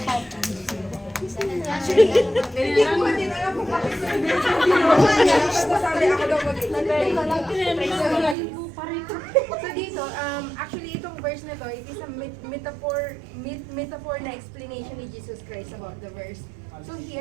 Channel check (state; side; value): drops out; left; at 8.3 s